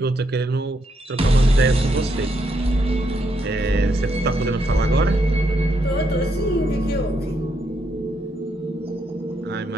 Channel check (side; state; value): both; normal; correlation 0.77